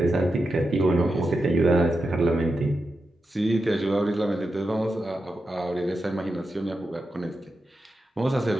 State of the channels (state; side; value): normal; both; correlation 0.89